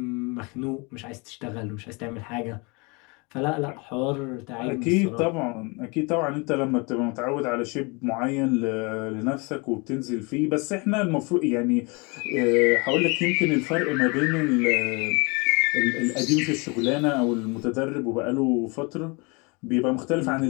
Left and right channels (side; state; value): right; quieter; 29.3 dB